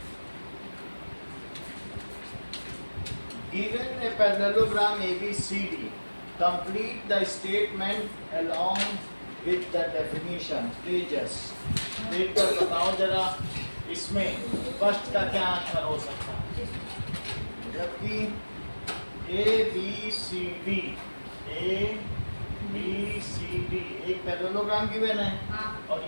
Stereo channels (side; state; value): both; inverted; correlation -1.00